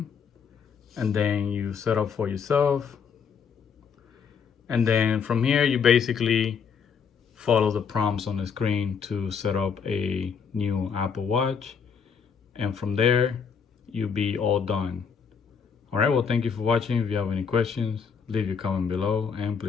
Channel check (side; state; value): right; quieter; 6.4 dB